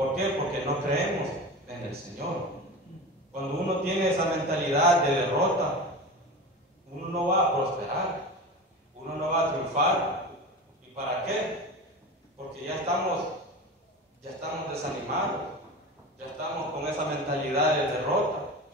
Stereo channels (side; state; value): both; normal; correlation 0.29